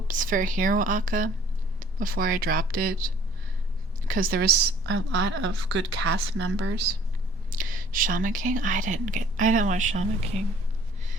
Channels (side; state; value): both; normal; correlation 0.55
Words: for Hero Aka before I dropped it because there was a lot of good cast members. Shaman King, I didn't watch Shaman King.